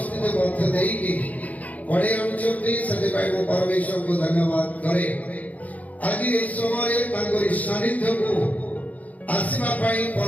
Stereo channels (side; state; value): right; late; 0.073 ms